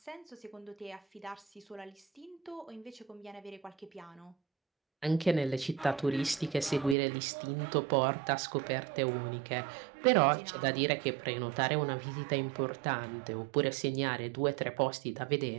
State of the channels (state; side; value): drops out; left; at 7.0 s